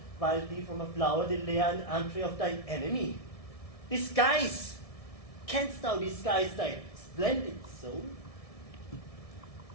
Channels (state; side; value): late; right; 1.7 ms